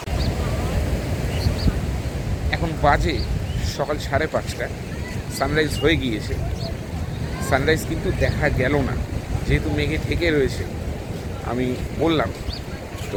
এখন বাজে সকাল 5:30। সানরাইজ হয়ে গিয়েছে। সানরাইজ কিন্তু দেখা গেল না, যেহেতু মেঘে ঢেকে রয়েছে। আমি বললাম তো,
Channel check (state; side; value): identical; both; correlation 1.00